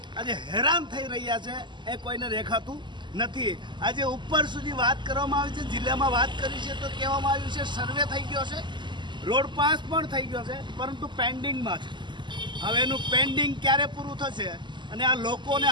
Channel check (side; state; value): left; late; 0.22 ms